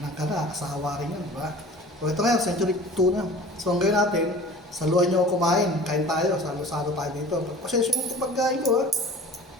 Nakakasawa rin yun, diba? So ito ngayon, Century tuna. So ang gawin natin, saluhan nyo ako kumain. Kain tayo, salo-salo tayo dito. Pasensya mo ito pagkain ko, ha?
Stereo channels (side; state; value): both; normal; correlation 0.43